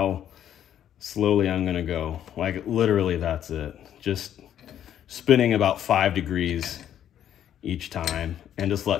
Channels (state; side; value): quieter; right; 10.4 dB